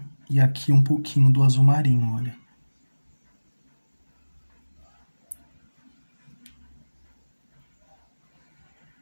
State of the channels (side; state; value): both; inverted; correlation -1.00